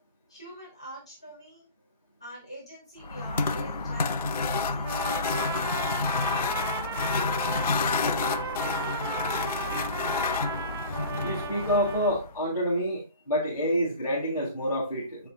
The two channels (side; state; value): both; inverted; correlation -0.39